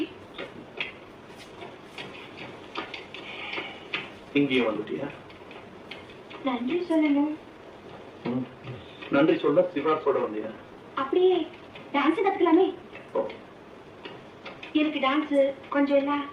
இங்கே வந்துட்டியா? நன்றி சொல்லணும். நன்றி சொல்ல சிவாஸோட வந்தியா? அப்படியே டான்ஸ் கத்துக்கலாமே. எனக்கு டான்ஸ் கொஞ்சம் இல்ல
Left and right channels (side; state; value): both; identical; correlation 1.00